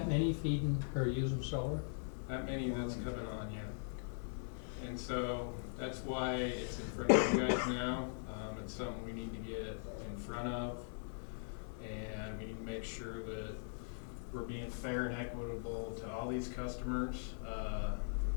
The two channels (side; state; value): right; silent; digital silence